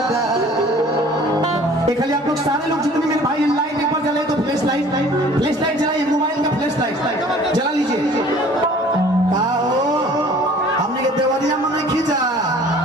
खाली आप लोग सारे लोग जितने मेरे भाई लाइट एक बार जलाए तो फ्लैश लाइट जलाइए, मोबाइल का फ्लैश लाइट जला लीजिए। हमने के देवरिया में नहीं खींचा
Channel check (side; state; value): both; normal; correlation 0.50